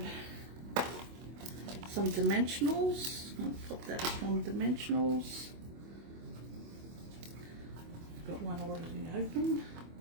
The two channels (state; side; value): late; left; 24 ms